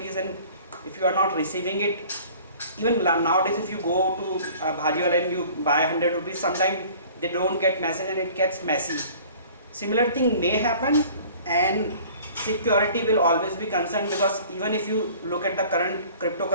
and if you are not receiving it, even nowadays if you go to Bhajiwala and you buy 100 rupees, sometimes they don't get message and it gets messy. Similar thing may happen, and security will always be concerned, because even if you look at the current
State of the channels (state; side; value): inverted; both; correlation -0.48